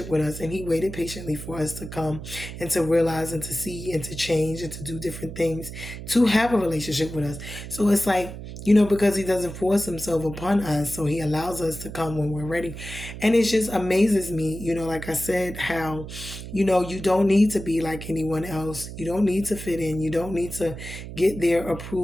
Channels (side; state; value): right; noise; hum, 10 dB below the sound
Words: with us, and he waited patiently for us to come and to realize and to see and to change and to do different things to have a relationship with us. So it's like, because he doesn't force himself upon us, so he allows us to come when we're ready. And it just amazes me, like I said, how, you don't need to be like anyone else. You don't need to fit in. You don't need to get their